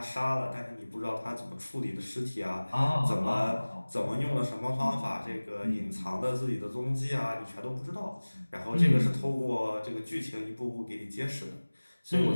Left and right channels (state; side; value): inverted; both; correlation -1.00